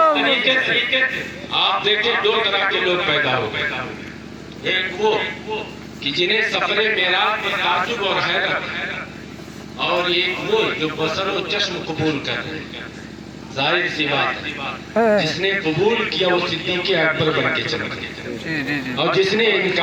آپ دیکھیں دو طرح کے لوگ پیدا ہو گئے، ایک وہ کہ جنہیں سفر معراج پر تعجب اور حیرت، اور ایک وہ جو بصر و چشم قبول کر رہے ہیں۔ ظاہر سی بات ہے جس نے قبول کیا وہ صدیق اکبر بن کے چمک گیا، اور جس نے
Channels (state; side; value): identical; both; correlation 1.00